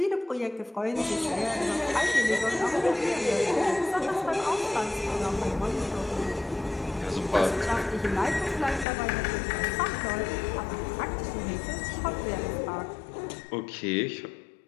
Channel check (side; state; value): right; drops out; at 8.8 s